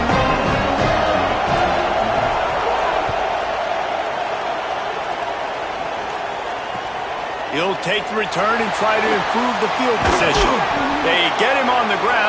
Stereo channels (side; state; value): both; identical; correlation 1.00